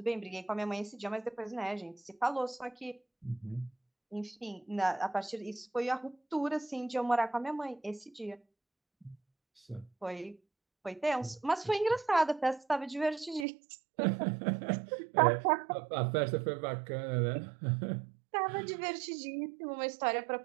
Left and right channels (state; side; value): drops out; left; at 13.5 s